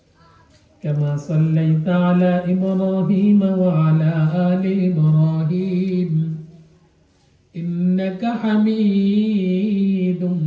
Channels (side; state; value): both; identical; correlation 1.00